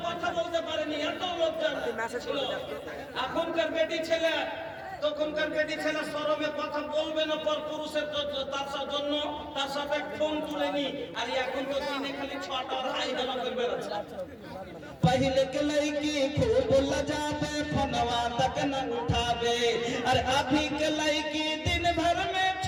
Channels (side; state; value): both; identical; correlation 1.00